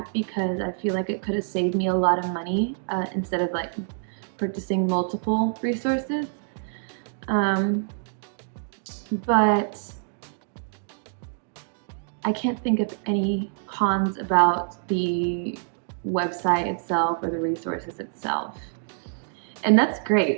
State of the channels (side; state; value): left; silent; digital silence